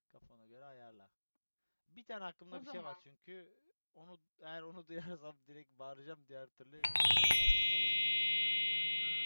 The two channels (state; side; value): inverted; both; correlation -1.00